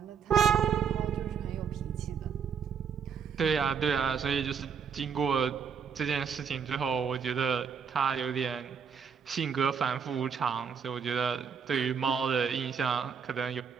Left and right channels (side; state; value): left; quieter; 6.7 dB